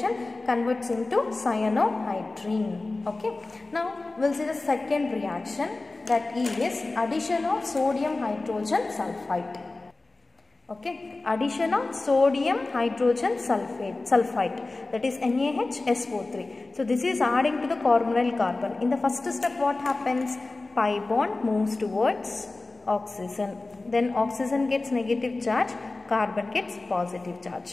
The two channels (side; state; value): right; quieter; 3.3 dB